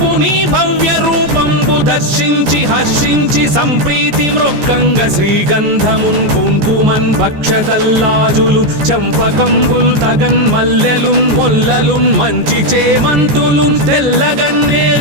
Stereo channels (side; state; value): left; late; 14 ms